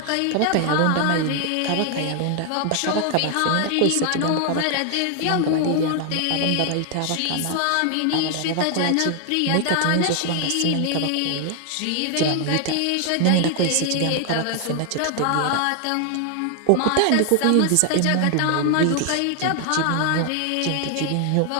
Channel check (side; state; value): both; different; correlation 0.00